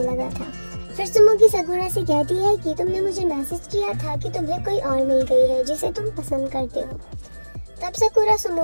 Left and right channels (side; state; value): both; inverted; correlation -1.00